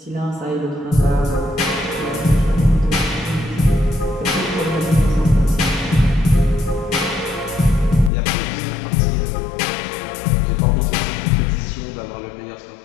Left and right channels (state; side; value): drops out; right; at 8.1 s